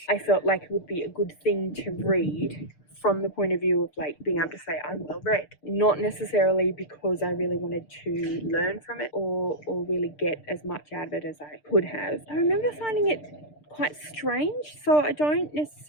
I felt like it would be a good thing to read from the point of view of like being able to say I'm well read, not necessarily because I really wanted to learn from it or really get as much out of it as I could have. I remember finding it quite strange, so I didn't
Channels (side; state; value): right; late; 6.7 ms